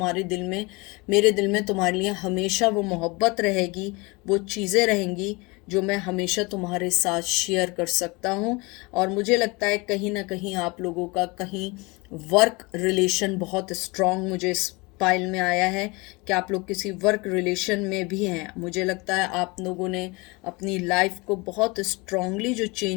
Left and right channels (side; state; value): right; quieter; 26.0 dB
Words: दिल में, मेरे दिल में तुम्हारे लिए हमेशा वो मोहब्बत रहेगी, वो चीज़ें रहेंगी जो मैं हमेशा तुम्हारे साथ शेयर कर सकता हूँ। और मुझे लगता है कहीं ना कहीं आप लोगों का कहीं वर्क रिलेशन बहुत स्ट्रांग मुझे इस पाइल में आया है कि आप लोग किसी वर्क रिलेशन में भी हैं। मुझे लगता है आप लोगों ने अपनी लाइफ को बहुत स्ट्रांगली जो